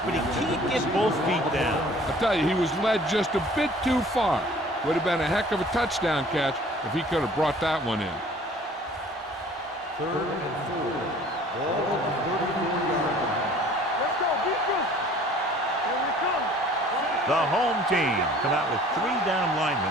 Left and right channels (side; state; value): both; normal; correlation 0.51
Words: but he can't get both feet down. I tell you, he was led just a bit too far. Would have been a heck of a touchdown catch if he could have brought that one in. Third and 4. Ball on the 34-yard line. Let's go. Beat this. Here we come. The home team come out with 3 down linemen